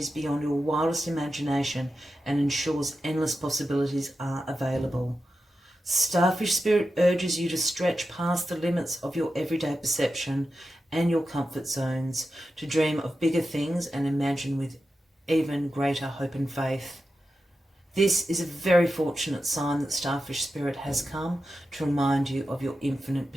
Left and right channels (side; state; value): both; normal; correlation 0.90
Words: beyond your wildest imagination and ensures endless possibilities are available. Starfish Spirit urges you to stretch past the limits of your everyday perception and your comfort zones, to dream of bigger things and imagine with even greater hope and faith. This is a very fortunate sign that Starfish Spirit has come to remind you of your infinite